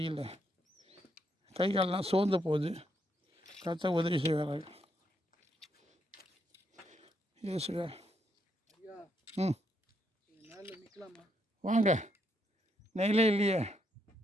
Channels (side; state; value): both; normal; correlation 0.76